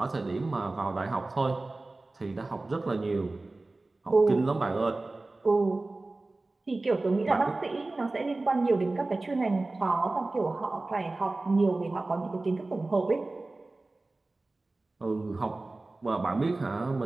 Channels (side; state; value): left; quieter; 3.1 dB